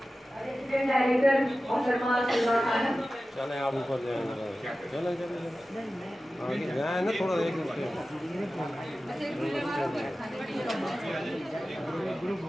रेजिडेंट डायरेक्टर मोहतरमा सलमा खानम चले आप ऊपर जाएंगे। चले चले आगे जाए ना थोड़ा एक ग्रुप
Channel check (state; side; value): normal; both; correlation 0.95